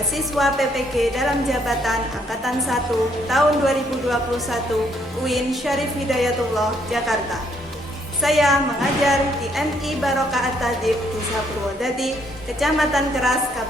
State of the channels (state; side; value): normal; both; correlation 0.69